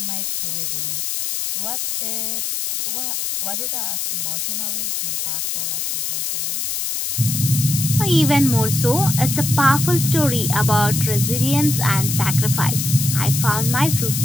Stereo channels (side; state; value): left; noise; hiss, 2 dB below the sound